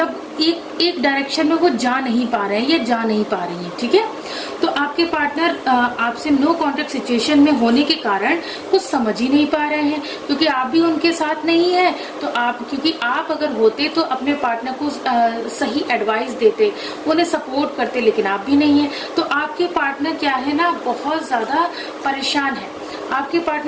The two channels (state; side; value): identical; both; correlation 1.00